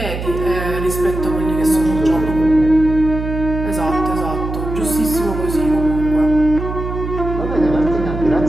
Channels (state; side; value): noise; right; hum, 6 dB below the sound